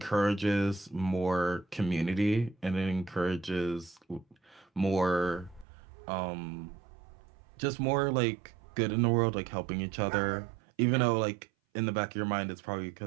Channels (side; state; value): left; drops out; at 5.7 s